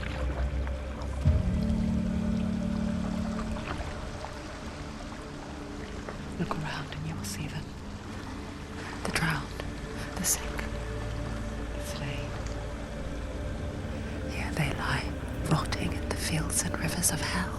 Look around and you will see them. The drowned, the sick, the slain. Here they lie, rotting in the fields and rivers of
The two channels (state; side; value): identical; both; correlation 1.00